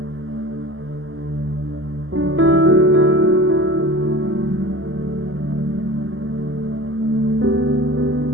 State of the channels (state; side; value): late; left; 0.59 ms